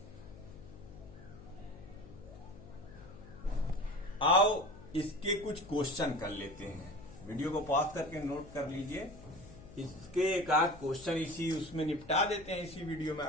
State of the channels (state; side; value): noise; left; hum, 17 dB below the sound